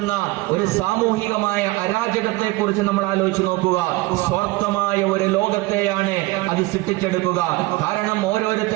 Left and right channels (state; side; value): quieter; left; 20.8 dB